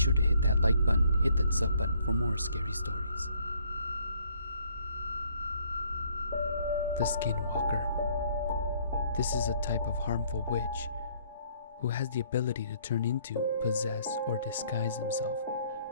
to hit that like button, hit that sub button for more scary stories. The Skinwalker. This is a type of harmful witch who has the ability to turn into, possess, or disguise himself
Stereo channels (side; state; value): both; inverted; correlation -0.64